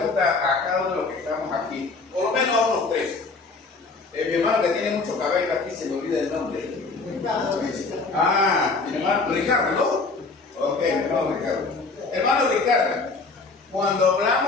a cada uno de los que estamos aquí, por lo menos a unos tres. Mi hermano que tiene mucho cabello aquí, se me olvida el nombre. Mi hermano Ricardo, ¿no? Ok, mi hermano Ricardo. Hermano Ricardo, cuando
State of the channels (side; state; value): right; quieter; 3.9 dB